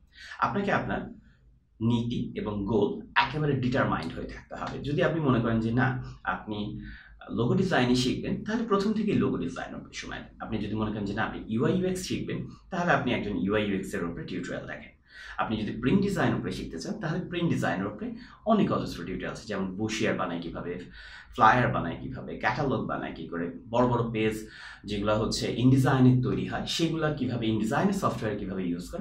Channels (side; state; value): both; identical; correlation 1.00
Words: আপনাকে আপনার নীতি এবং গোল একেবারে ডিটারমাইন্ড হয়ে থাকতে হবে। যদি আপনি মনে করেন যে না, আপনি লোগো ডিজাইনই শিখবেন, তাহলে প্রথম থেকেই লোগো ডিজাইন উপরে সময় দেন। আপনি যদি মনে করেন যে না, আপনি ইউআই ইউএক্স শিখবেন, তাহলে আপনি একজন ইউআই ইউএক্স এর উপরে টিউটোরিয়াল দেখেন। আপনি যদি প্রিন্ট ডিজাইন উপরে শিখতে চান, তাহলে প্রিন্ট ডিজাইনের উপরে অনেক অজস্র টিউটোরিয়াল আছে, যেমন বুশিয়ার বানায় কিভাবে, ফ্লায়ার বানায় কিভাবে, ক্যাটালগ বানায় কি করে, বড় বড় পেজ যেগুলো হচ্ছে ইনডিজাইনের তৈরি হয়, সেগুলো কিভাবে ইনডিজাইনের সফটওয়্যার কিভাবে ইউজ